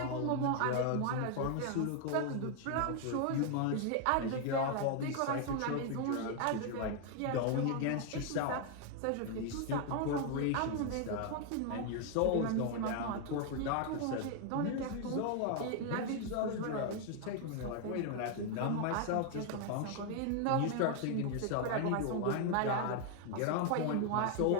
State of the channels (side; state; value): both; different; correlation 0.00